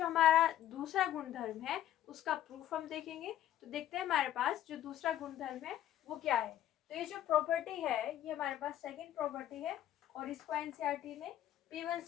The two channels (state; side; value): quieter; right; 12.2 dB